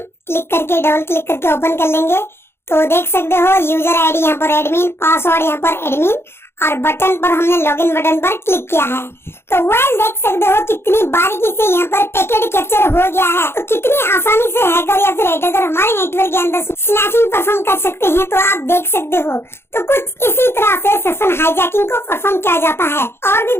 क्लिक करके डबल क्लिक करके ओपन कर लेंगे। तो देख सकते हो यूजर आईडी यहाँ पर एडमिन, पासवर्ड यहाँ पर एडमिन और बटन पर हमने लॉगिन बटन पर क्लिक किया है। तो वेल देख सकते हो कितनी बारीकी से यहाँ पर पैकेट कैप्चर हो हो गया है, तो कितनी आसानी से हैकर या फिर अटैकर हमारे नेटवर्क के अंदर स्नैचिंग परफॉर्म कर सकते हैं, तो आप देख सकते हो। तो कुछ इसी तरह से सेशन हाईजैकिंग को परफॉर्म किया जाता है। और भी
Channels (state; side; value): late; right; 0.12 ms